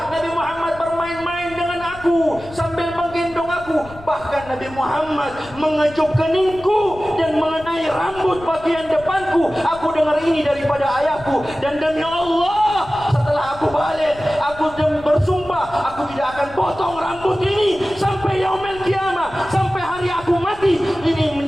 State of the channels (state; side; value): noise; left; rumble, 19 dB below the sound